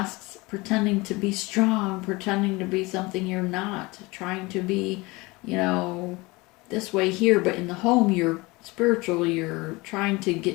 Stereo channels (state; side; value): quieter; right; 23.5 dB